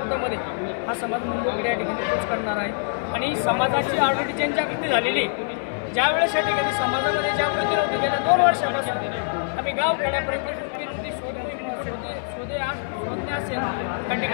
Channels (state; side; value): silent; right; digital silence